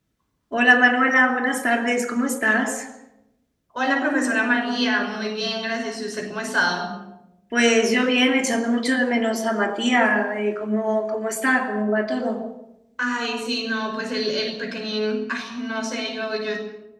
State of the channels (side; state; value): both; identical; correlation 1.00